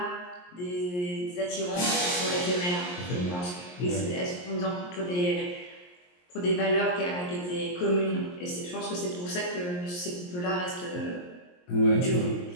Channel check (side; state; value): right; late; 22 ms